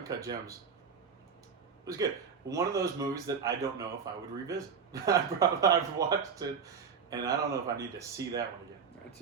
Gems was good. One of those movies that I don't know if I would revisit. I've watched it, and I don't know if I need to see that one again. I'd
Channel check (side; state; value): left; quieter; 6.2 dB